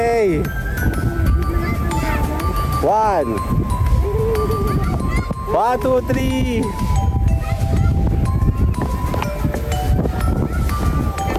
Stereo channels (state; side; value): identical; both; correlation 1.00